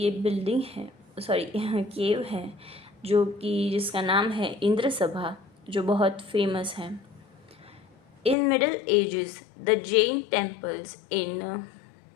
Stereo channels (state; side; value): drops out; right; at 8.3 s